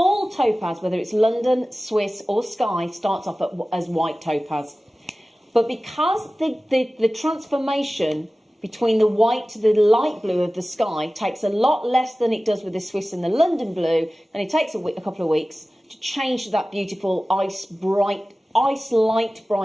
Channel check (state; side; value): normal; both; correlation 0.97